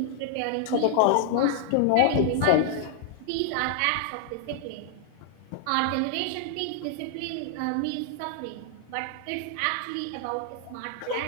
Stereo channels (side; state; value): both; different; correlation -0.01